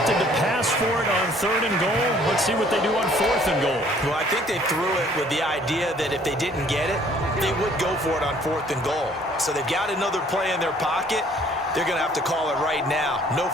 to pass for it on 3rd and goal. Let's see what they do on 4th and goal. Well, I think they threw it with the idea that if they didn't get it, they would go for it on 4th and goal. So they've got another play in their pocket. They're going to have to call it right now. No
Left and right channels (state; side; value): normal; both; correlation 0.58